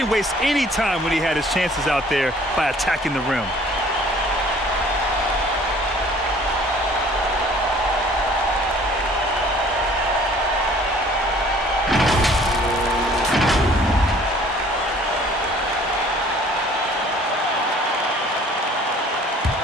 waste any time when he had his chances out there by attacking the rim.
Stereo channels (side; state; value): both; normal; correlation 0.54